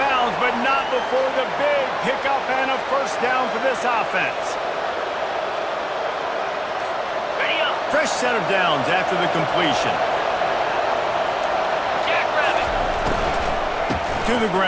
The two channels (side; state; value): both; identical; correlation 1.00